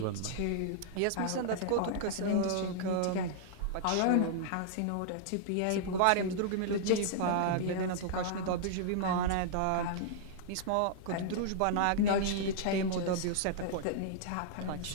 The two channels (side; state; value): both; different; correlation -0.01